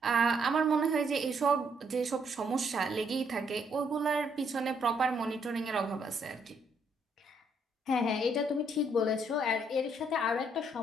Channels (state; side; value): normal; both; correlation 0.71